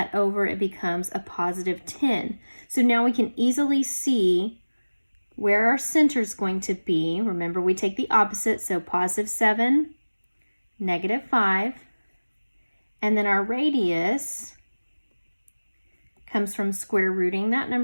over, it becomes a +10. So now we can easily see where our center is going to be. Remember, we take the opposite, so +7, -5. And then our radius comes from square rooting that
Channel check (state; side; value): inverted; both; correlation -1.00